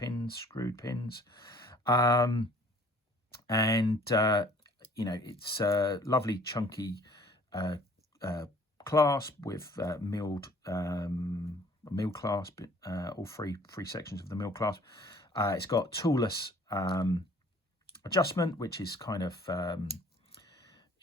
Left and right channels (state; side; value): normal; both; correlation 0.54